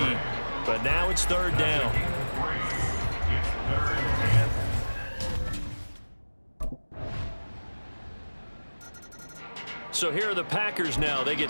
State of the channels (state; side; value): inverted; both; correlation -1.00